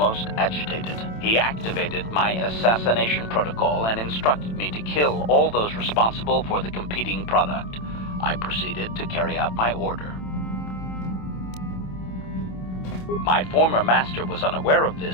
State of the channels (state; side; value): late; right; 27 ms